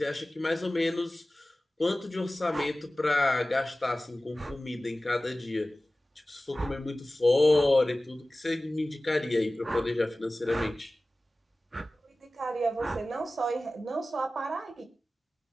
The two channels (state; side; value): normal; both; correlation 0.97